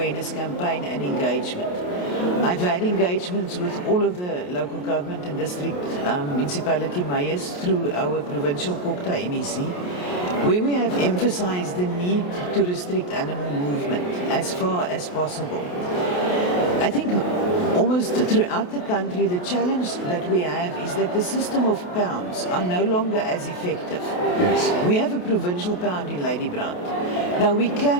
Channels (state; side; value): late; right; 28 ms